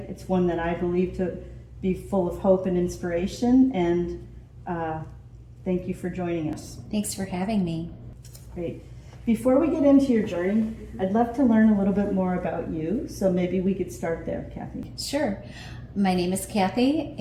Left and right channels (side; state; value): both; identical; correlation 1.00